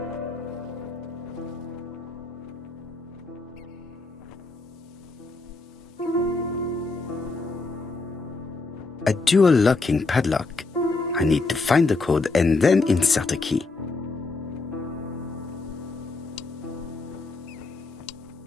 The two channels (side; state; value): right; quieter; 3.6 dB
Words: A dual locking padlock. I need to find the code and then insert a key.